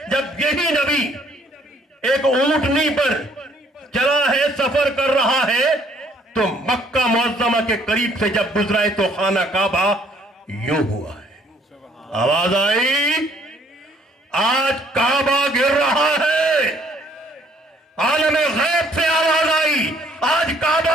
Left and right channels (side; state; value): both; normal; correlation 0.62